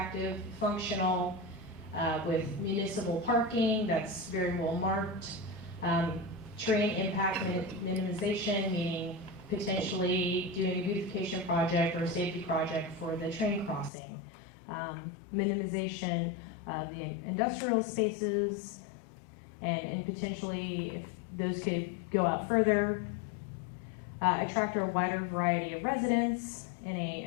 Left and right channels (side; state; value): right; drops out; at 13.9 s